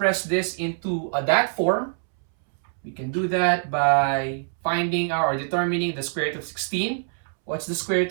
this into that form. We can do that by finding or determining the square root of 16. What's the square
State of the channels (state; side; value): silent; left; 62 dB below the other